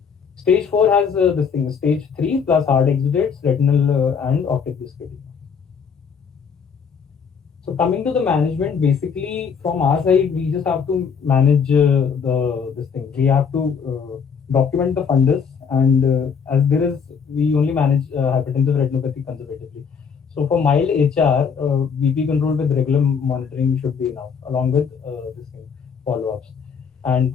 Stage 4 has this thing, stage 3 plus hard exudates, retinal and optic disc edema. So coming to the management, basically from our side, we just have to manage this thing. We have to document the fundus, and we only manage hypertensive retinopathy conservatively. So for mild HR, BP control with regular monitoring should be enough, along with this thing. follow-ups. And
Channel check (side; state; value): right; quieter; 6.3 dB